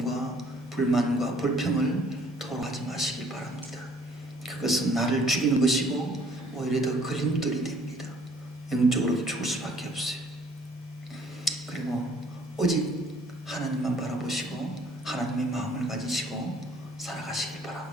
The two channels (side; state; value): both; normal; correlation 0.59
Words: 불만과 불평을 토로하지 마시길 바랍니다. 그것은 나를 죽이는 것이고 오히려 더 걸림돌이 됩니다. 영적으로도 죽을 수밖에 없어요. 그리고 오직 하나님만 바라보시고 하나님의 마음을 가지시고 살아가시길